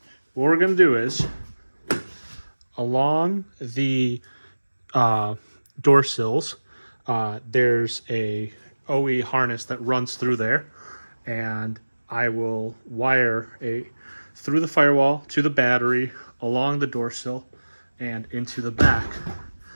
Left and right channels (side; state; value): both; inverted; correlation -1.00